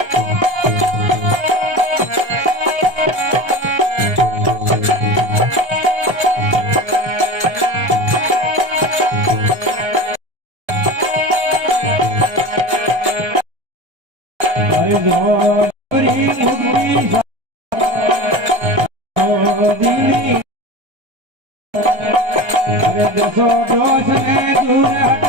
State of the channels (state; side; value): late; left; 1.3 ms